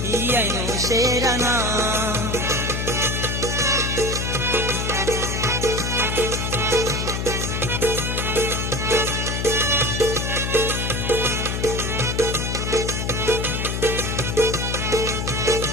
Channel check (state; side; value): noise; left; hum, 2 dB below the sound